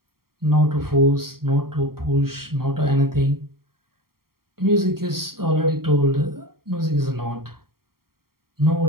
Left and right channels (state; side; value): late; left; 0.93 ms